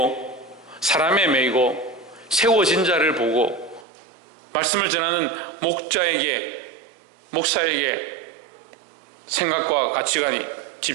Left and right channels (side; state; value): left; drops out; at 3.9 s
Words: 사람에 매이고 세워진 자를 보고 말씀을 전하는 목사에게 생각과 가치관이